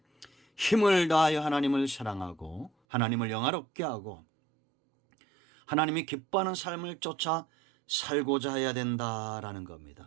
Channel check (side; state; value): left; drops out; at 2.7 s